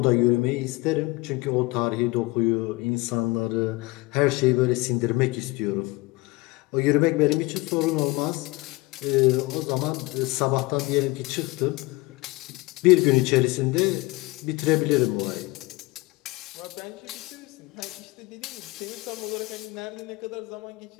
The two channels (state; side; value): quieter; right; 22.7 dB